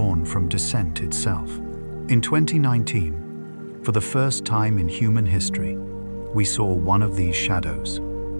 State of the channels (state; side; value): inverted; both; correlation -1.00